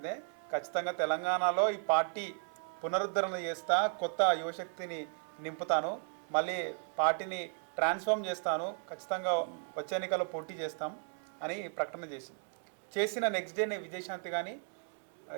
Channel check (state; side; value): silent; left; 54 dB below the other